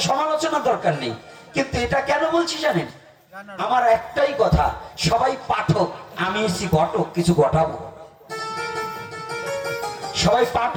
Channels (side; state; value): both; identical; correlation 1.00